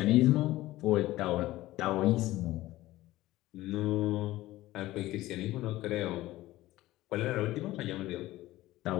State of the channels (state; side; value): quieter; right; 16.7 dB